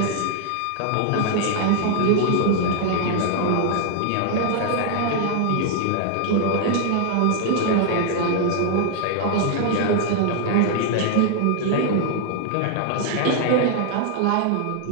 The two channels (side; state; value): both; different; correlation 0.00